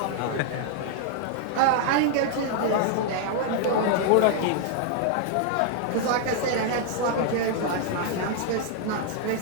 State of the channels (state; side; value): different; both; correlation -0.01